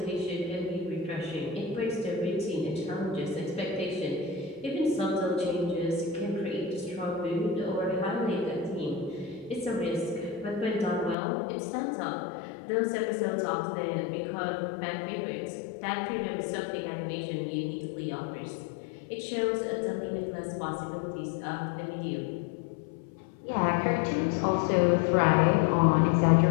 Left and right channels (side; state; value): right; drops out; at 11.2 s